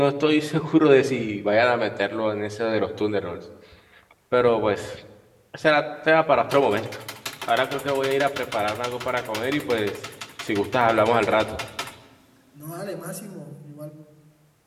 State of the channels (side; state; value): both; identical; correlation 1.00